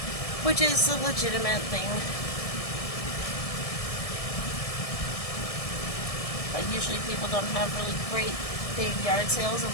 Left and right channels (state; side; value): late; right; 1.7 ms